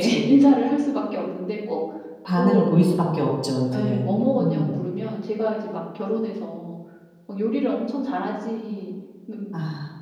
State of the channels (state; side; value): identical; both; correlation 1.00